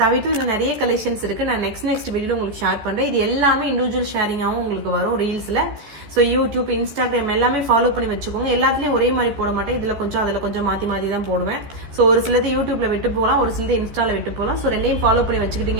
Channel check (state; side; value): late; left; 14 ms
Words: தவிர்த்து இன்னும் நிறைய கலெக்ஷன்ஸ் இருக்கு. நான் நெக்ஸ்ட் வீடியோல உங்களுக்கு ஷேர் பண்றேன். இது எல்லாமே இண்டிவிஜுவல் ஷேரிங்காகவும் உங்களுக்கு வரும் ரீல்ஸ்ல. ஸோ யூடியூப், இன்ஸ்டாகிராம் எல்லாமே ஃபாலோ பண்ணி வச்சுக்கோங்க. எல்லாத்துலயும் ஒரே மாதிரி போட மாட்டேன். இதுல கொஞ்சம் அதுல கொஞ்சம் மாத்தி தான் போடுவேன். ஸோ ஒரு சிலது யூடியூப்ல விட்டு போகலாம், ஒரு சிலது இன்ஸ்டால விட்டு போகலாம். ஸோ ரெண்டையும் ஃபாலோ பண்ணி